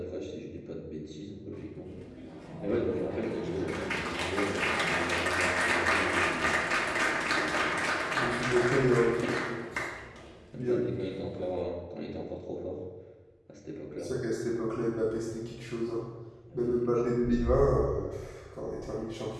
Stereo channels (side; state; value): both; identical; correlation 1.00